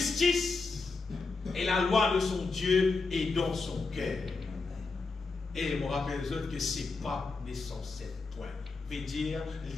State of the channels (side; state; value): right; quieter; 4.0 dB